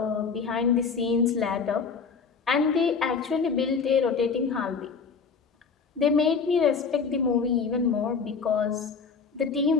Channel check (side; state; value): right; quieter; 5.4 dB